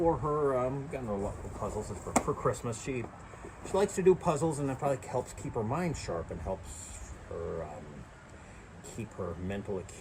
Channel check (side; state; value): both; identical; correlation 1.00